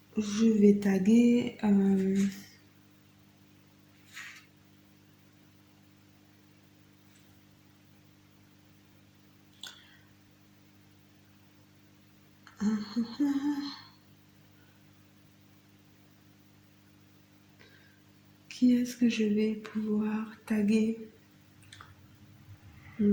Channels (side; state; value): both; identical; correlation 1.00